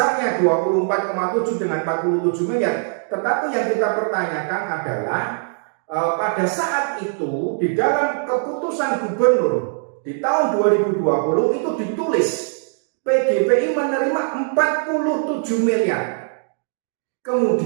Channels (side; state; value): left; silent; 65 dB below the other